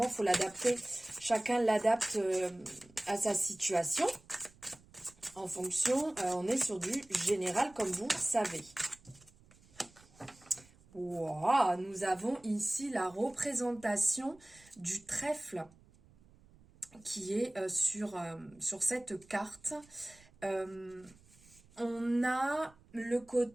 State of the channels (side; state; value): right; noise; rumble, 27 dB below the sound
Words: il faut l'adapter. Chacun l'adapte à sa situation. En fonction, on est sur du général comme vous savez. Wow, nous avons ici la représentation du trèfle qui est sur cette carte. On a le